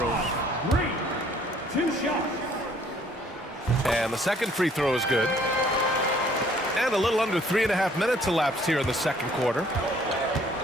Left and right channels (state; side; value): normal; both; correlation 0.60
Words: 2 shots. And the second free throw is good. And a little under 3.5 minutes elapsed here in the second quarter.